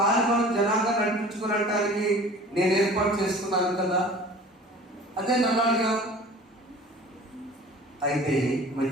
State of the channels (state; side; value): normal; both; correlation 0.44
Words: జనాంగా నడిపించుకునడానికి నేను ఏర్పాటు చేసుకున్నాను కదా, అదే నల్లాడుగా. అయితే